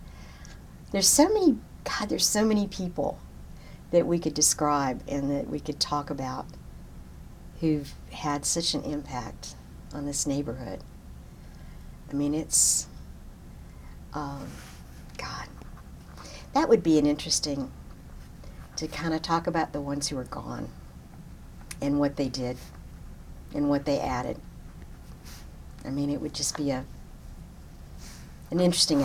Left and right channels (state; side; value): identical; both; correlation 1.00